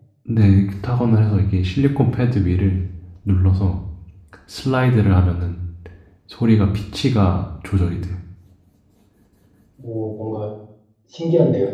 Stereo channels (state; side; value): identical; both; correlation 1.00